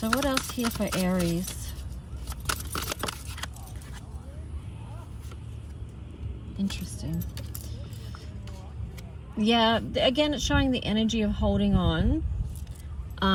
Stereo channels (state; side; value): identical; both; correlation 1.00